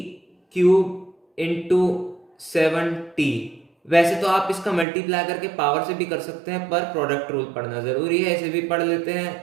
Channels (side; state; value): left; drops out; at 4.9 s